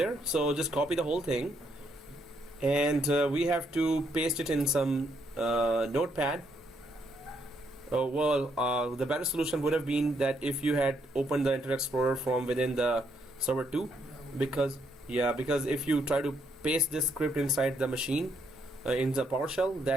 So just copy the whole thing, and we have to paste it in some notepad. The better solution would have been that if you had opened the Internet Explorer from within the server 2, because if you try to paste this script inside the machine in the PowerShell,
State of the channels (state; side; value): normal; both; correlation 0.74